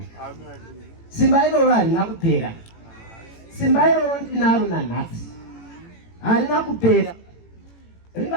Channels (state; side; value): late; right; 18 ms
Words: Simba iroro harina kupera. Simba iroro ndinaro nanhasi. Harina kupera.